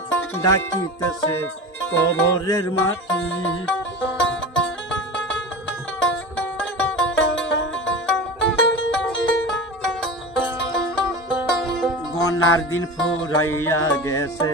ডাকিতেছে কবরের মাটি। গনার দিন ফুরাইয়া গেছে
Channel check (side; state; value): both; normal; correlation 0.30